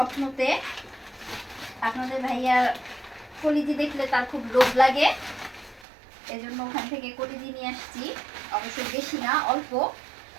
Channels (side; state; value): left; drops out; at 5.9 s